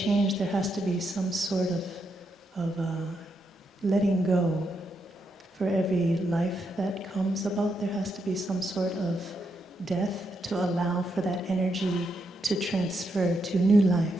there has to be some sort of letting go. For every life that comes about, there has to be some sort of death to allow for that energy to transfer to new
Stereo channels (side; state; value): both; normal; correlation 0.81